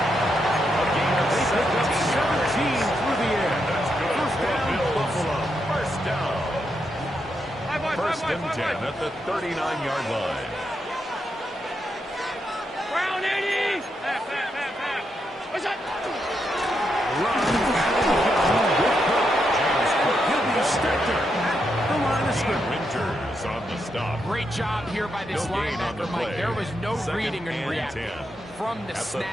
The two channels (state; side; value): normal; both; correlation 0.82